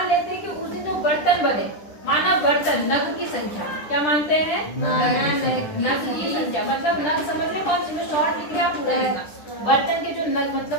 लेते हैं कि उस दिन जो बर्तन बने माना बर्तन नग की संख्या क्या मानते हैं नग की संख्या मतलब नग समझ रहे कौन सी में शॉर्ट लिख लिया पूरा लिखना बर्तन के जो नग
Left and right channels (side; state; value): right; late; 10 ms